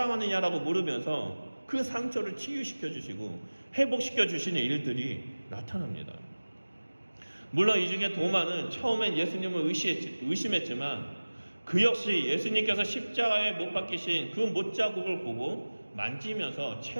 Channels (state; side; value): inverted; both; correlation -1.00